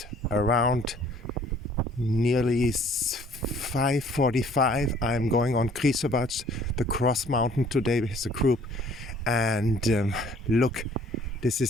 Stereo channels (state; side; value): normal; both; correlation 0.56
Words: around nearly 5:45. I'm going on Krisovac, the cross mountain today with a group. And look, this